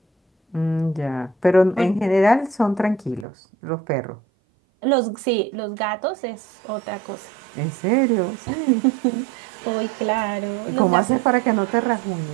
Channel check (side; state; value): left; drops out; at 3.2 s